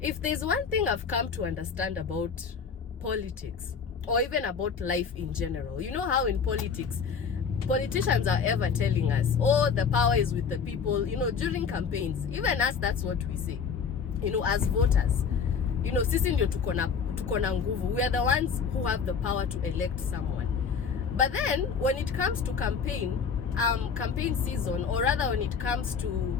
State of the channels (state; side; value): quieter; right; 6.1 dB